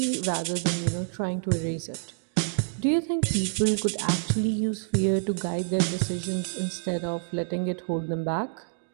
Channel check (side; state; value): left; silent; digital silence